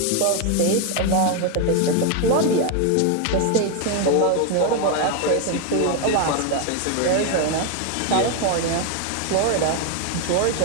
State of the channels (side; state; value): both; different; correlation 0.01